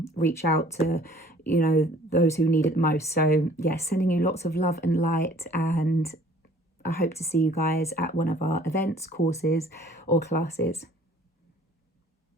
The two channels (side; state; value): both; normal; correlation 0.54